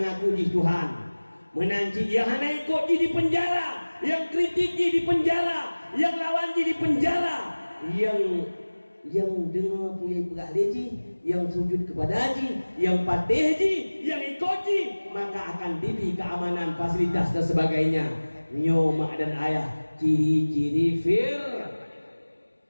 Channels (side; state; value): both; inverted; correlation -1.00